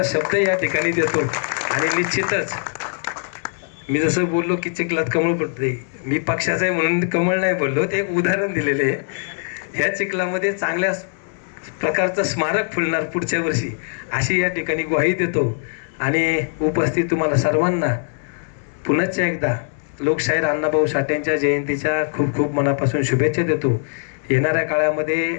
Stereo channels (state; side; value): silent; right; digital silence